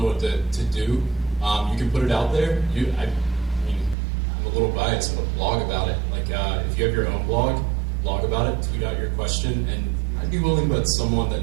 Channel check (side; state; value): left; drops out; at 4.0 s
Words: know what to do, you can put it out there. I'm a little biased, but blog about it. Like if you have your own blog about it, tweet out your question, and I'd be willing to bet someone that